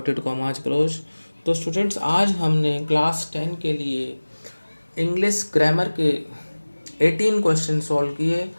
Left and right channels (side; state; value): both; inverted; correlation -1.00